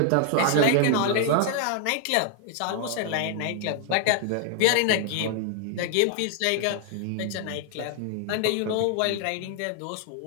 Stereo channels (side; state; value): both; different; correlation 0.00